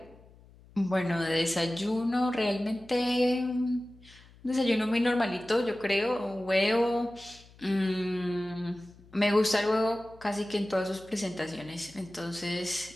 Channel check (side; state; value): left; noise; hum, 24 dB below the sound